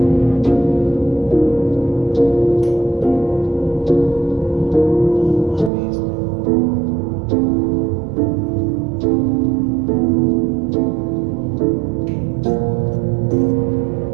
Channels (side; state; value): left; drops out; at 5.7 s